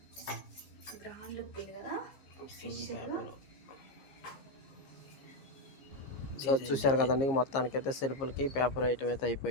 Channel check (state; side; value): late; right; 15 ms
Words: గ్రాండ్ లుక్ ఉంది కదా. సో చూశారు కదండి, మొత్తానికి అయితే సెల్ఫ్లకి పేపర్ ఐటమ్ అయితే